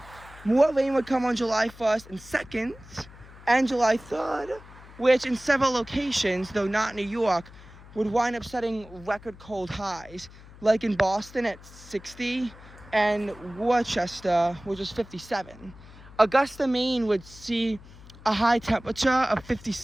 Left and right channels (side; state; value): left; noise; hum, 20 dB below the sound